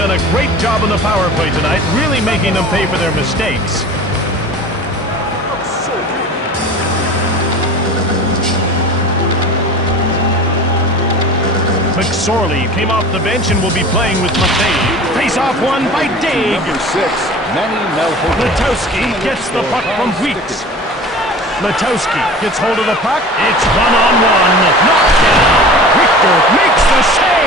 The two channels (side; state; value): both; normal; correlation 0.39